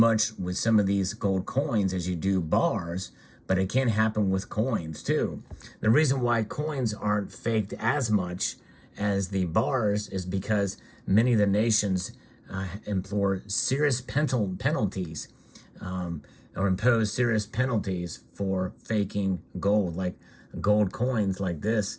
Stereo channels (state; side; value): identical; both; correlation 1.00